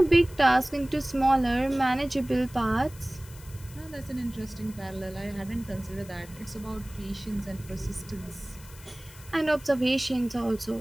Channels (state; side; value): noise; left; hiss, 20 dB below the sound